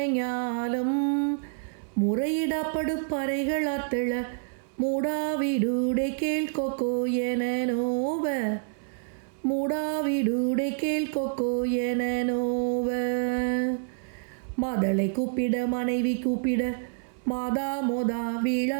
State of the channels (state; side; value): silent; left; 60 dB below the other